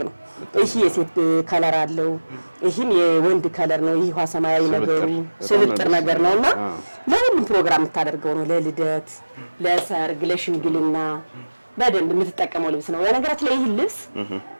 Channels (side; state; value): both; inverted; correlation -1.00